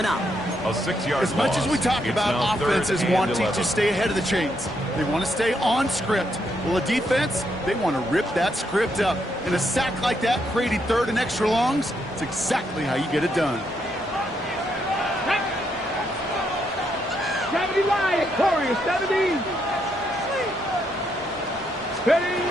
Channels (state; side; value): normal; both; correlation 0.77